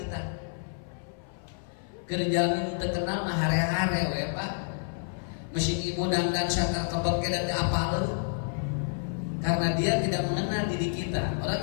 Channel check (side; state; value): right; silent; 56 dB below the other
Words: Kerja teu kenal mah hare-hare we Pak. Mesin ibu dandan sakar kebeke dan apal. Karena dia tidak mengenal diri kita. Orang